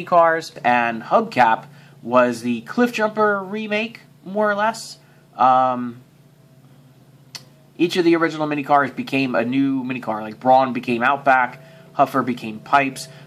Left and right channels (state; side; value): identical; both; correlation 1.00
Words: cars, and Hubcap was the Cliffjumper remake, more or less. Each of the original mini cars became a new mini car. Like Brawn became Outback, Huffer became Pipes.